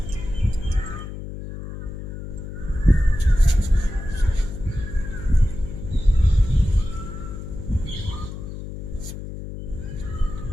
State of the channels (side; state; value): left; noise; hum, 9 dB below the sound